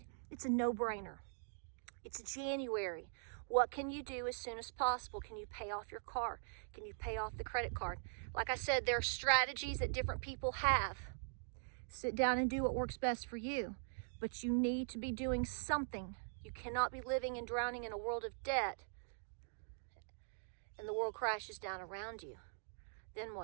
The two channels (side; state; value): left; silent; digital silence